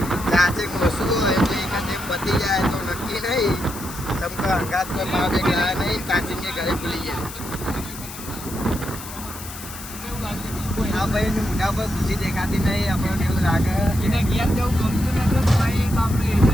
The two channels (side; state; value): left; noise; hiss, 12 dB below the sound